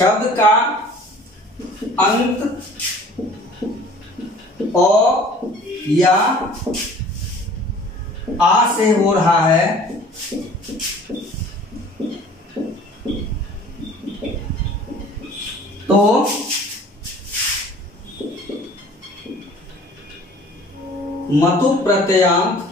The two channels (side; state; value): both; normal; correlation 0.49